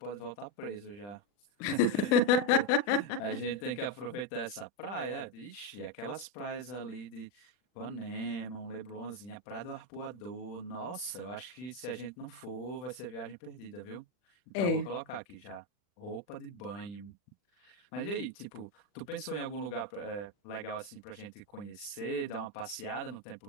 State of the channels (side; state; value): right; late; 40 ms